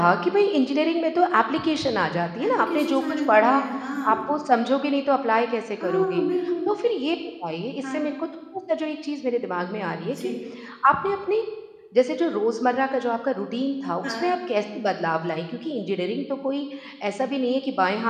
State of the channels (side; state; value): both; identical; correlation 1.00